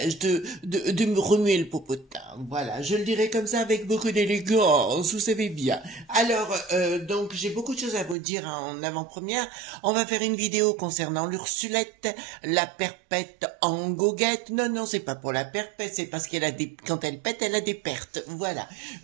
de me remuer le popotin. Voilà, je le dirais comme ça avec beaucoup d'élégance, vous savez bien. Alors, donc, j'ai beaucoup de choses à vous dire en avant-première. On va faire une vidéo concernant l'Ursulette, la perpète en goguette. Non, c'est pas pour la perpète, c'est parce qu'elle a des, quand elle pète, elle a des pertes. Voilà.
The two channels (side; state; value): left; drops out; at 8.2 s